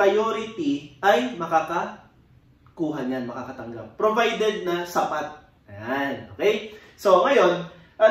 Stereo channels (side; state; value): both; identical; correlation 1.00